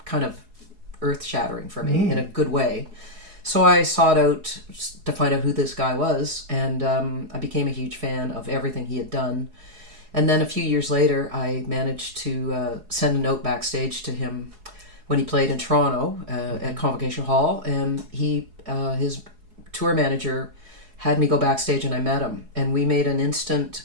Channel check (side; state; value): left; late; 4.7 ms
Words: kind of earth-shattering for me in a good way. So I sought out to find out who this guy was, and I became a huge fan of everything he had done. And then a few years later, I managed to send a note backstage to him when he played in Toronto at Convocation Hall, and his tour manager had me go backstage, and I met him, and we made an